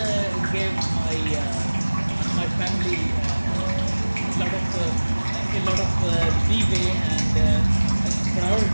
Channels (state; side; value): inverted; both; correlation -1.00